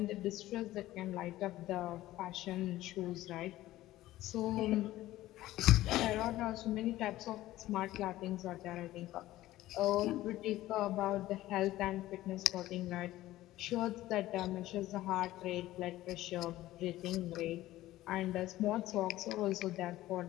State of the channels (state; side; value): quieter; right; 15.7 dB